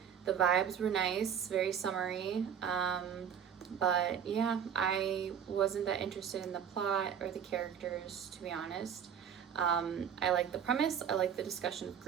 The vibes were nice, very summery. But yeah, I wasn't that interested in the plot or the characters, to be honest. I like the premise, I like the discussion of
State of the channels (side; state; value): left; quieter; 8.2 dB